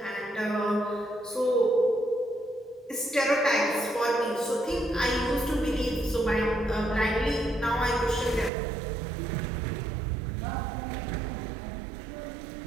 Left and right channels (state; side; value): drops out; left; at 8.5 s